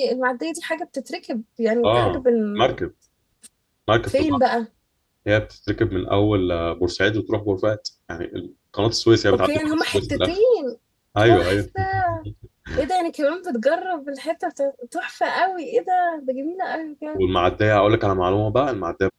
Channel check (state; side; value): identical; both; correlation 1.00